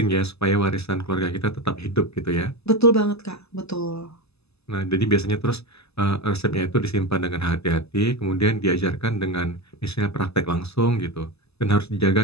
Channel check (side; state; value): right; late; 0.79 ms